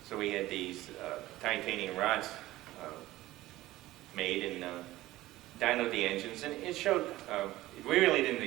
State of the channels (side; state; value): left; quieter; 16.8 dB